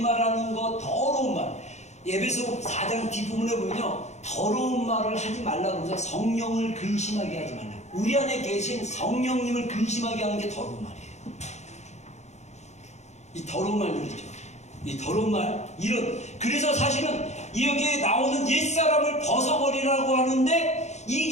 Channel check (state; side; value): late; right; 0.33 ms